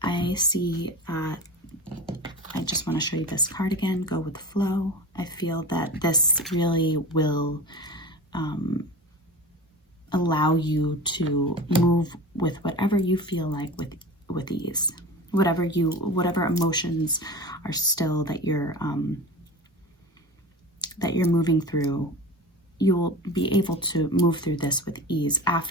I see, I just want to show you this card again, go with the flow. I feel that this really will allow you to move with whatever you feel like with ease. Whatever emotions are still that you're moving through, you'll be able to move through this with ease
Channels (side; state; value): both; normal; correlation 0.32